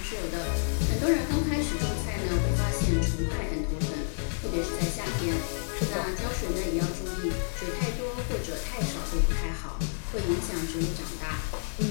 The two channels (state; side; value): silent; right; 58 dB below the other